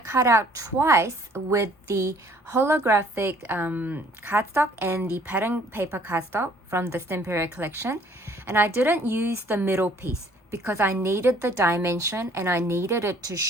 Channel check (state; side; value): normal; both; correlation 0.58